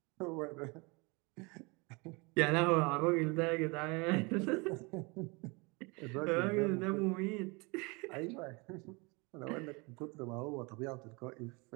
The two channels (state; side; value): quieter; left; 28.2 dB